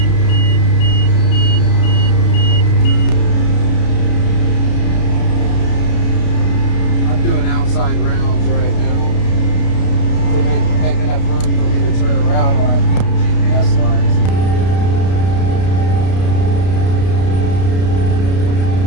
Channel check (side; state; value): right; late; 32 ms